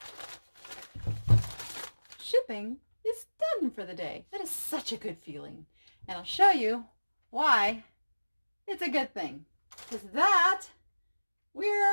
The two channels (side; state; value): both; inverted; correlation -1.00